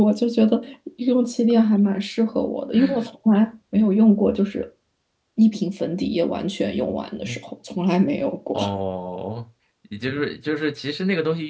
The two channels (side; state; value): both; identical; correlation 1.00